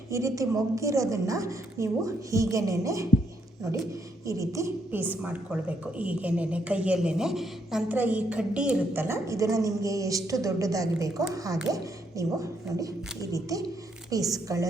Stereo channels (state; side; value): normal; both; correlation 0.74